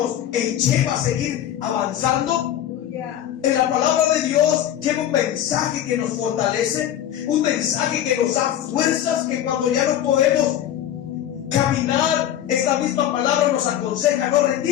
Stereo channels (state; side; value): quieter; right; 11.3 dB